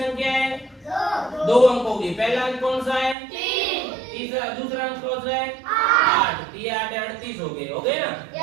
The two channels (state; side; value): drops out; left; at 3.2 s